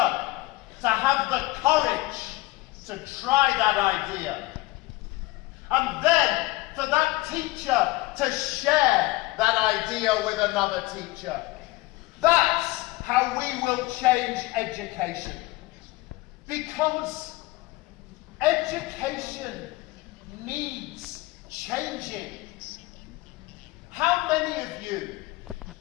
to have the courage to try that idea. And then for that teacher to share that idea with another teacher. That's how we will change education. Because education needs changing. How many of you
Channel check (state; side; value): quieter; right; 20.6 dB